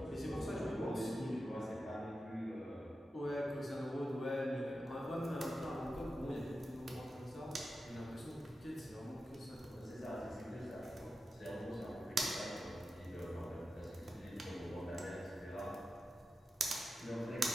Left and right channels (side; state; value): both; normal; correlation 0.91